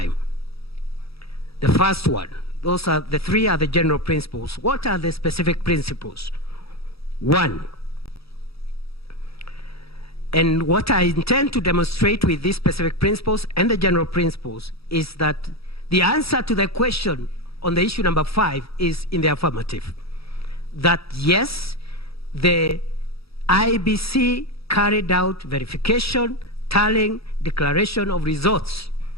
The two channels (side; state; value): right; late; 0.77 ms